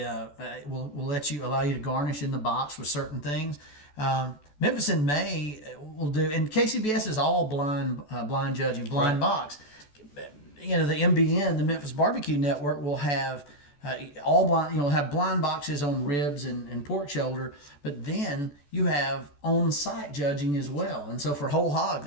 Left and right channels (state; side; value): late; right; 14 ms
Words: will allow you to garnish in the box with certain things. Memphis in May will do, and KCBS is all blind judging, blind box. The MBN, the Memphis Barbecue Network, will have all blind. Have blind boxes on ribs and pork shoulder, but then you have on-site judging as well. And so for whole hog,